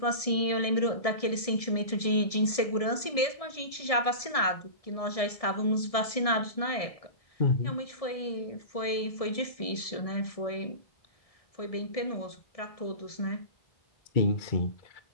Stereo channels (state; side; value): late; right; 1.7 ms